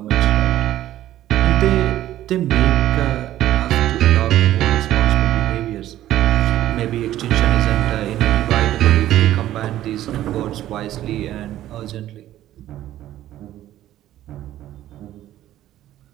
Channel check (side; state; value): left; quieter; 13.3 dB